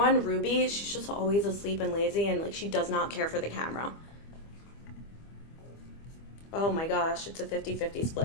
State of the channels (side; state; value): right; late; 25 ms